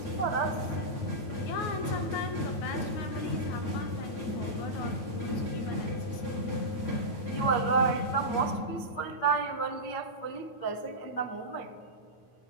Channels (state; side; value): late; right; 9.2 ms